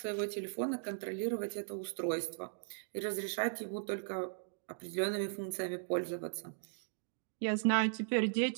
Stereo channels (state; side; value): silent; left; digital silence